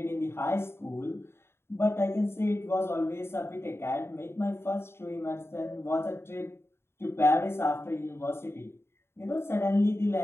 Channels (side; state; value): right; late; 0.12 ms